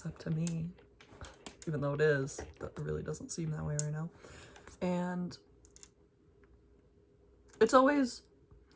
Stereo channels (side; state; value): both; identical; correlation 1.00